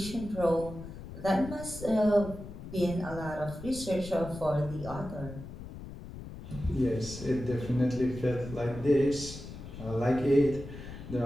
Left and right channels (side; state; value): left; noise; rumble, 12 dB below the sound